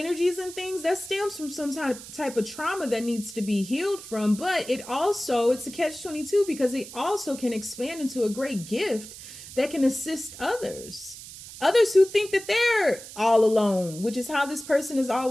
and things, that stems from some type of trauma that needs to be healed from. But it's a catch-22, because it also can expand into a great gift that can assist others who think that they're all alone, which is how this person has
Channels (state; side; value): noise; right; hiss, 14 dB below the sound